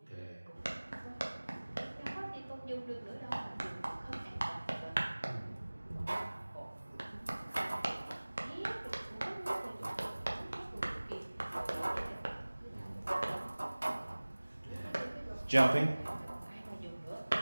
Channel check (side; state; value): both; inverted; correlation -1.00